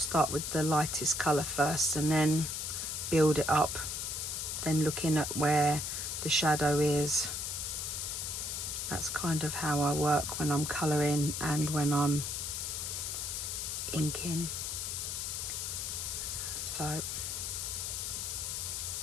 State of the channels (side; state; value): left; noise; hiss, 3 dB below the sound